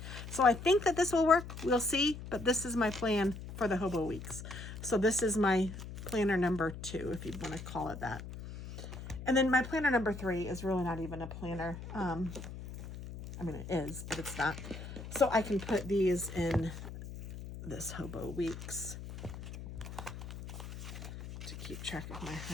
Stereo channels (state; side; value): noise; left; hum, 10 dB below the sound